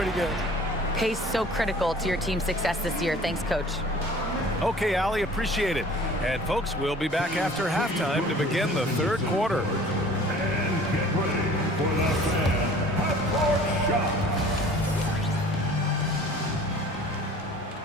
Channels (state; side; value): normal; both; correlation 0.48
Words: good. Pace so critical to your team's success this year. Thanks, Coach. Okay, Allie, appreciate it. And folks, we'll be back after halftime to begin the third quarter. And get ready for the fan half-court shot.